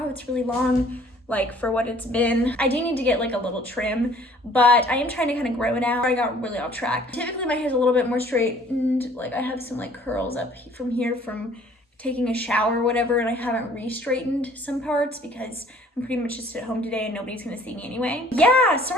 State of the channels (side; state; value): both; normal; correlation 0.55